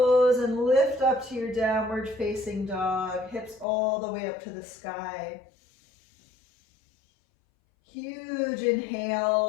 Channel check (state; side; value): drops out; right; at 3.7 s